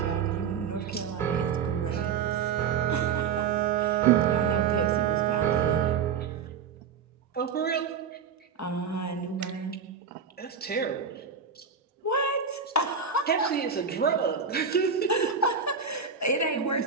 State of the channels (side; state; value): left; quieter; 6.4 dB